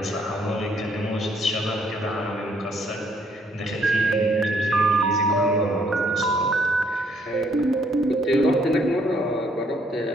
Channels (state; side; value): normal; both; correlation 0.68